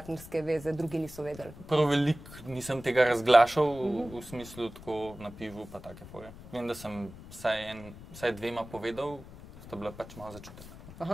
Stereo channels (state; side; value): noise; left; rumble, 16 dB below the sound